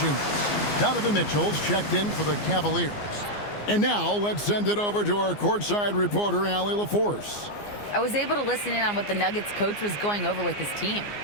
Donovan Mitchell's checked in for the Cavaliers. And now let's send it over to our courtside reporter, Allie LaForce. I was able to listen in on what the Nuggets coach was going over with his team.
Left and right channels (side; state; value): right; late; 14 ms